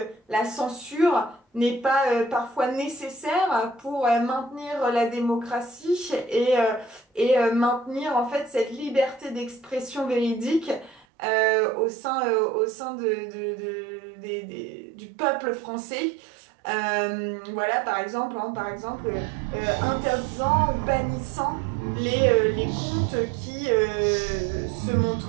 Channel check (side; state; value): left; drops out; at 11.1 s